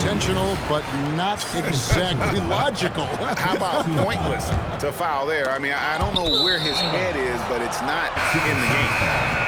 but not exactly logical. How about pointless to foul there? I mean, I don't know where his head is, but it's not in the game.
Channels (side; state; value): both; identical; correlation 1.00